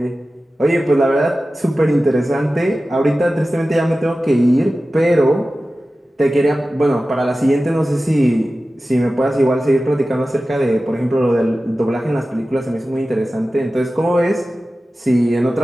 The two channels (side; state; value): both; normal; correlation 0.95